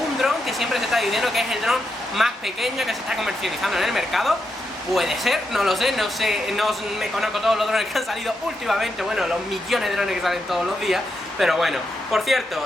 dron que siempre se está diciendo que es el dron más pequeño que se está comercializando en el mercado. Puede ser, no lo sé, no me conozco todos los drones que han salido últimamente, bueno, los millones de drones que salen todos los días, pero bueno. Por cierto,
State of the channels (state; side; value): normal; both; correlation 0.84